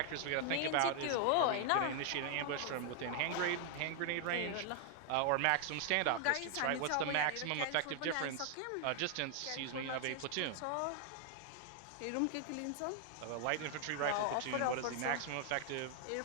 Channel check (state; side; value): different; both; correlation 0.00